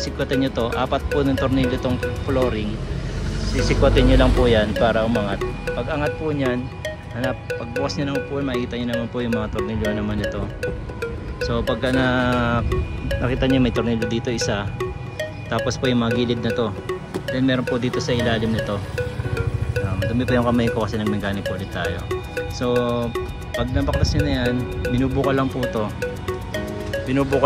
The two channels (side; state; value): both; identical; correlation 1.00